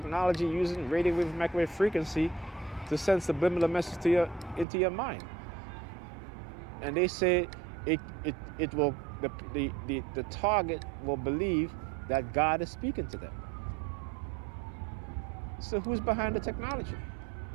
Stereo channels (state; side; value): drops out; left; at 4.7 s